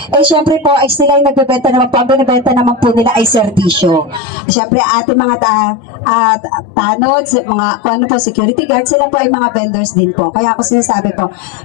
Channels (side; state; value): right; drops out; at 4.2 s